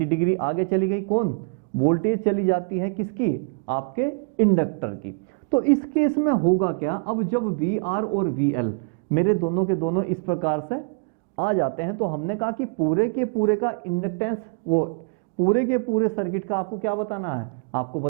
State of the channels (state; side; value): quieter; left; 39.7 dB